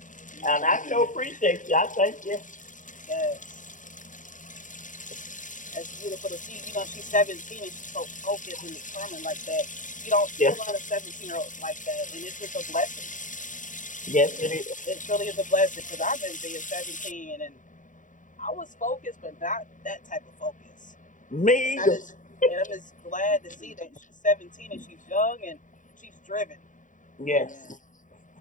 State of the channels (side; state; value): right; late; 0.37 ms